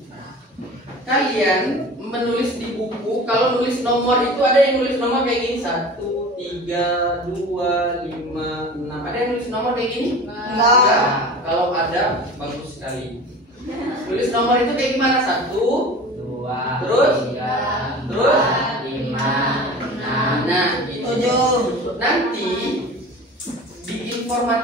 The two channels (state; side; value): normal; both; correlation 0.38